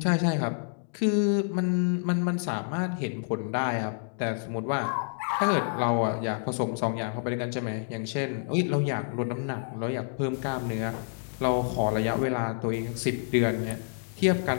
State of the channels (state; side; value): silent; right; digital silence